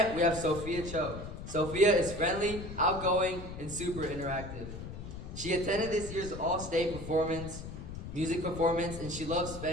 we have Sophia Cho. Sophia is friendly, outgoing, and super interactive. She attended this year's All-State music performance, and she loves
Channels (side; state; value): left; noise; rumble, 9 dB below the sound